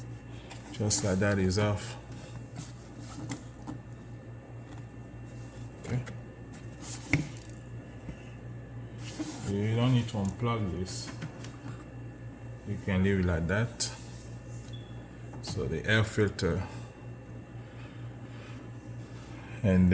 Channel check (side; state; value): both; identical; correlation 1.00